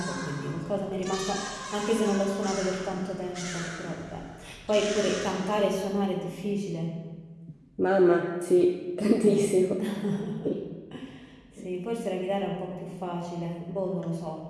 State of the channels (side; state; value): both; identical; correlation 1.00